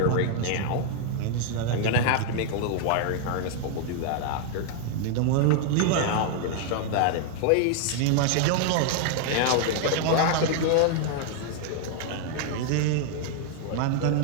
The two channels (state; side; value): different; both; correlation 0.00